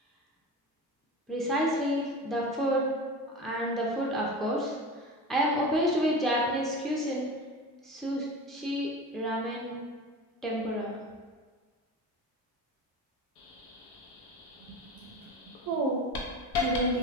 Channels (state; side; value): normal; both; correlation 0.31